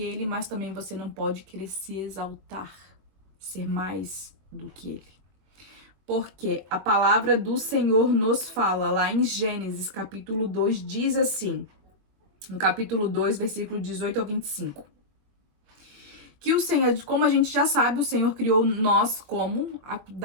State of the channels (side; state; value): left; late; 21 ms